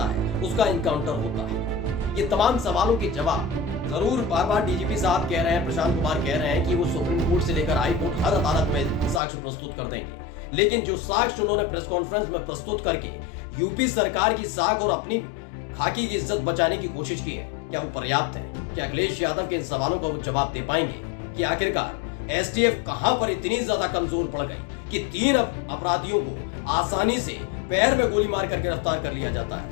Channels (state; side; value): drops out; right; at 9.2 s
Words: है उसका इनकाउंटर होता है। ये तमाम सवालों के जवाब जरूर बार बार डीजीपी साहब कह रहे हैं, प्रशांत कुमार कह रहे हैं कि वो सुप्रीम कोर्ट से लेकर हाई कोर्ट हर अदालत में साक्ष्य प्रस्तुत कर देंगे, लेकिन जो साक्ष्य उन्होंने प्रेस कॉन्फ्रेंस में प्रस्तुत करके यूपी सरकार की साख और अपनी खाकी की इज्जत बचाने की कोशिश की है, क्या वो पर्याप्त है? क्या अखिलेश यादव के इन सवालों का वो जवाब दे पाएंगे कि आखिरकार एसटीएफ कहां पर इतनी ज्यादा कमजोर पड़ गई कि 3 अपराधियों को आसानी से पैर में गोली मार कर गिरफ्तार कर लिया जाता